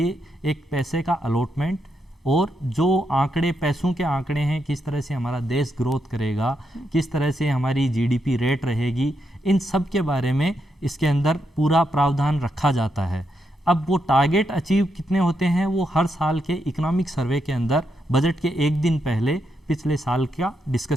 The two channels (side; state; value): both; normal; correlation 0.82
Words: एक पैसे का अलॉटमेंट, और जो आंकड़े, पैसों के आंकड़े हैं, किस तरह से हमारा देश ग्रोथ करेगा, किस तरह से हमारी जीडीपी रेट रहेगी, इन सब के बारे में इसके अंदर पूरा प्रावधान रखा जाता है। अब वो टारगेट अचीव कितने होते हैं वो हर साल के इकोनॉमिक सर्वे के अंदर बजट के एक दिन पहले पिछले साल का